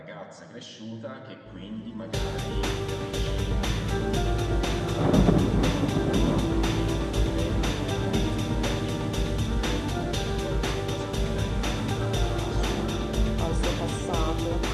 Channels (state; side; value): identical; both; correlation 1.00